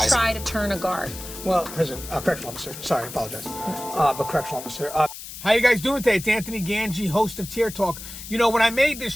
do they try to turn a guard? Well, correctional officer. Sorry, I apologize. But correctional officer. How you guys doing today? It's Anthony Gangi, host of Tier Talk. You know, when I made this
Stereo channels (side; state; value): left; noise; hiss, 12 dB below the sound